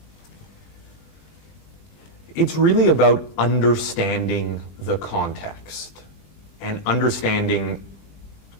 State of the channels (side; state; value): right; late; 20 ms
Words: It's really about understanding the context and understanding